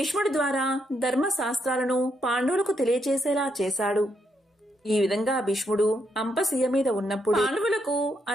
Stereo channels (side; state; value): both; normal; correlation 0.78